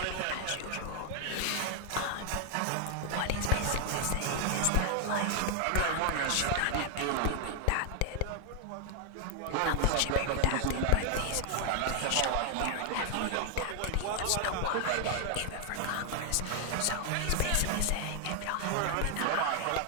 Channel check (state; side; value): different; both; correlation 0.00